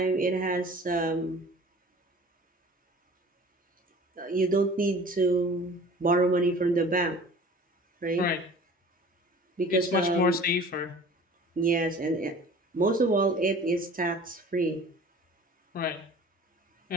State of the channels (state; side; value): normal; both; correlation 0.45